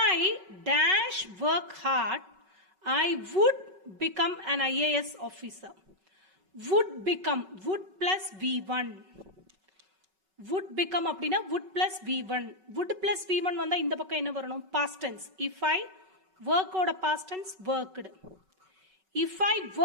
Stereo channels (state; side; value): late; left; 5.3 ms